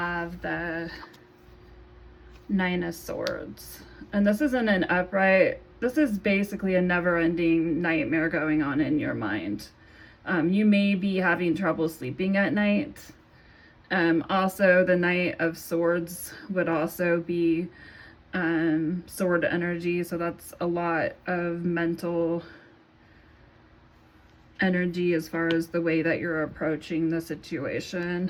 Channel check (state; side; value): identical; both; correlation 1.00